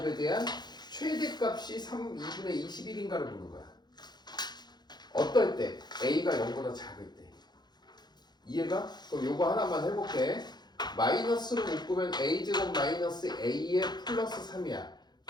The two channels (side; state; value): right; late; 0.21 ms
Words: 대한 최대값이 2분의 21인가를 보는 거야. 어떨 때? A가 0보다 작을 때. 이해가? 그럼 요거 하나만 해볼게. 마이너스로 묶으면 A제곱 마이너스 A의 플러스 3이야.